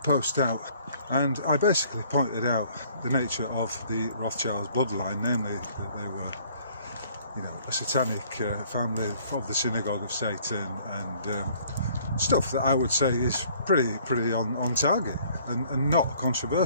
out, and I basically pointed out the nature of the Rothschilds bloodline, namely that they were, you know, a satanic family of the synagogue of Satan, and stuff that I would say is pretty on target and not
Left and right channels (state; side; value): inverted; both; correlation -0.58